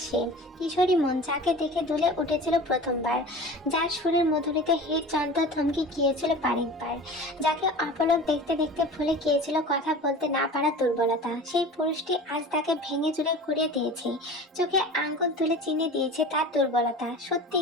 সে। কিশোরী মন, যাকে দেখে দুলে উঠেছিল প্রথমবার, যার সুরের মধুরীতে হৃদযন্ত্র থমকে গিয়েছিল বারেকবার, যাকে অপলক দেখতে দেখতে ভুলে গিয়েছিল কথা বলতে না পারা দুর্বলতা। সেই পুরুষটি আজ তাকে ভেঙে চুরে ঘুরিয়ে দিয়েছে, চোখে আঙ্গুল তুলে চিনে দিয়েছে তার দুর্বলতা।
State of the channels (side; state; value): both; normal; correlation 0.37